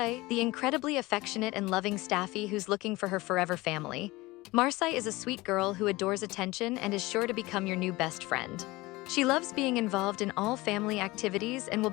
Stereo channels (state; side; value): quieter; right; 20.8 dB